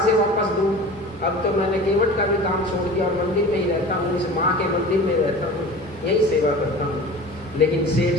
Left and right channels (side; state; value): both; normal; correlation 0.38